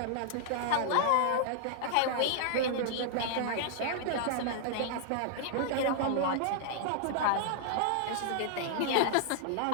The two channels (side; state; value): both; different; correlation -0.01